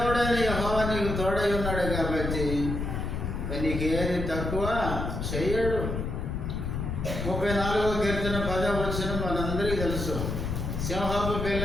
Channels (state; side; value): noise; left; rumble, 3 dB below the sound